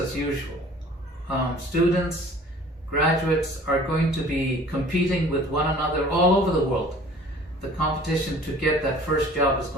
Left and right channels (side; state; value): both; normal; correlation 0.49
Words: usual. Students, graduates are going to be competing with one another all over the world. The competition to get that first job is